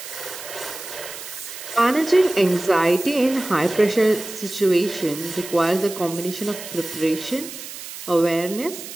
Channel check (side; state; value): right; noise; hiss, 11 dB below the sound